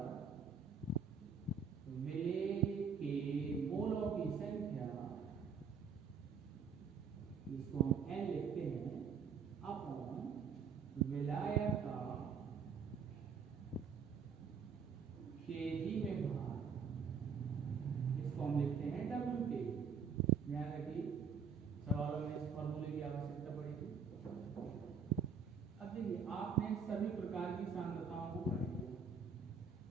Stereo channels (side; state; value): left; quieter; 6.1 dB